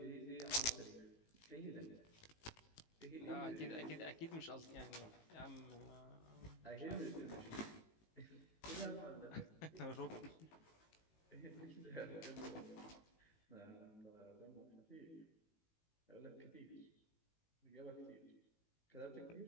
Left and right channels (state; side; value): late; right; 18 ms